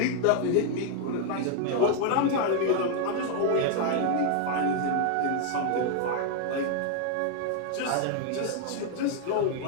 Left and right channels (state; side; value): different; both; correlation 0.00